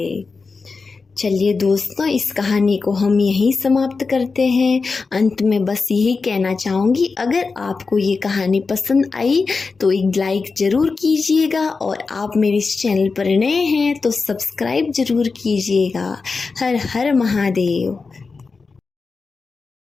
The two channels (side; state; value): right; quieter; 4.4 dB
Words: चलिए दोस्तों, इस कहानी को हम यहीं समाप्त करते हैं। अंत में बस यही कहना चाहूँगी, अगर आपको ये कहानी पसंद आई तो एक लाइक ज़रूर कीजिएगा और आप मेरे इस चैनल पर नए हैं तो सब्सक्राइब ज़रूर कीजिएगा। हर हर महादेव।